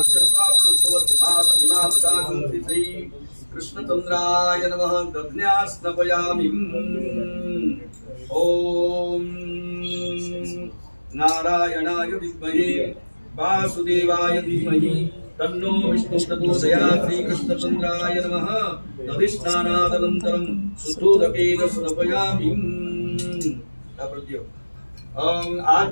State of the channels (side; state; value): both; inverted; correlation -1.00